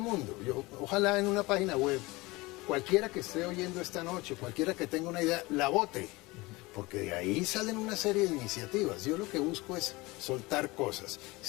ojalá en una página web, cualquiera que esté oyendo esta noche, cualquiera que tenga una idea, la vote. Porque de ahí salen una serie de iniciativas. Yo lo que busco es soltar cosas.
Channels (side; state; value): right; quieter; 22.3 dB